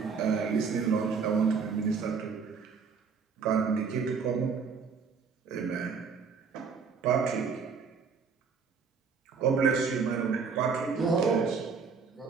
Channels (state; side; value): quieter; left; 5.5 dB